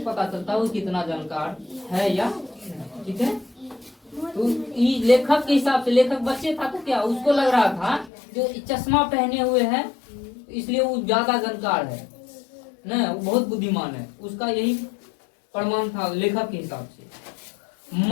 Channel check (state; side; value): drops out; right; at 8.1 s